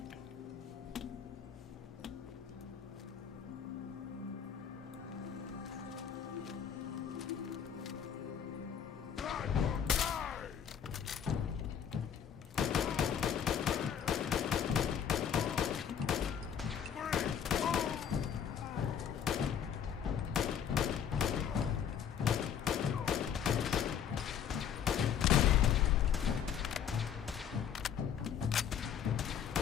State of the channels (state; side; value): quieter; right; 8.3 dB